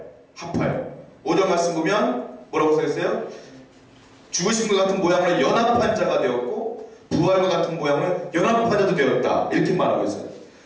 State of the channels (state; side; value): identical; both; correlation 1.00